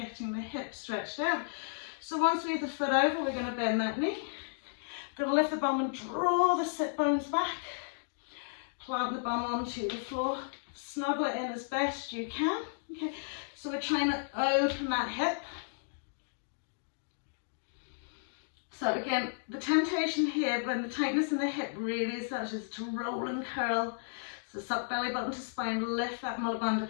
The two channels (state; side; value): silent; right; digital silence